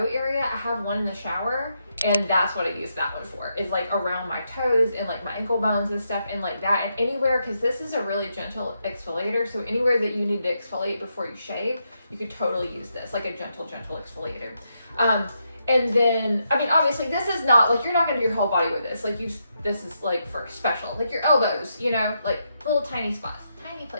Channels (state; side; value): inverted; both; correlation -0.81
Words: area. I have one in the shower, and that's what I use that one for, is like around my toes and like my ankle bones and stuff, and like that, and anywhere, because this is a really gentle exfoliator, so anywhere that you need to exfoliate before you shave, you could totally use this, like a gentle exfoliator. And then, I mean, obviously this is not, like, you're not gonna do your whole body with this, like this is like for special, like your elbows, like little tiny spots, tiny